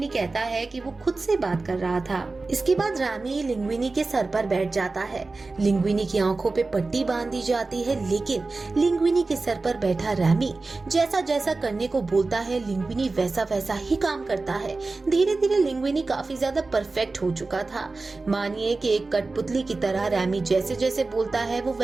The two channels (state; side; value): quieter; left; 3.6 dB